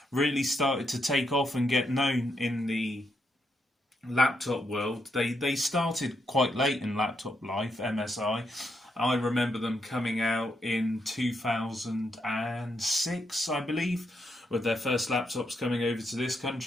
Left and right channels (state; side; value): normal; both; correlation 0.80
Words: really started to take off and get known in the laptop world. They started quite late in laptop life, MSI. I remember them coming out in 2006, I believe, with their first laptops coming over to this